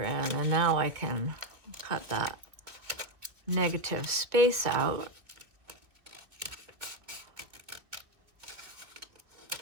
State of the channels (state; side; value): late; left; 2.2 ms